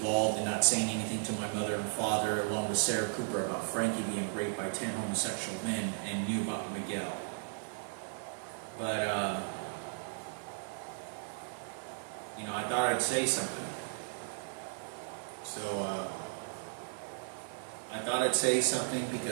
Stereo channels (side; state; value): left; silent; 54 dB below the other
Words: in not saying anything to my mother and father, along with Sarah Cooper, about Frankie being raped by 10 homosexual men, and knew about Miguel. But, you know, I thought I'd say something. So, I thought I'd say something